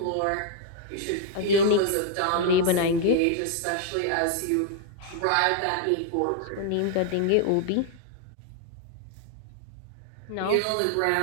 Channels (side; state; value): both; different; correlation 0.00